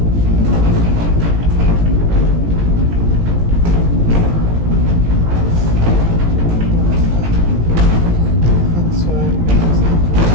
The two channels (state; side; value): late; left; 17 ms